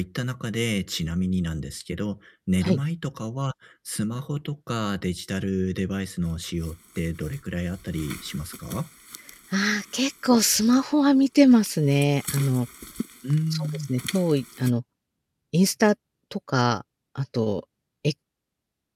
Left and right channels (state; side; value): identical; both; correlation 1.00